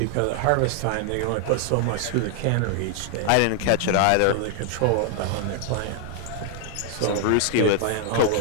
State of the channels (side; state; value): both; different; correlation 0.00